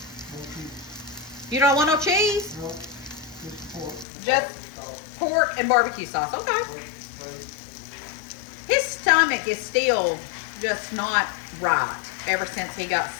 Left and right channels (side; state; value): right; drops out; at 4.0 s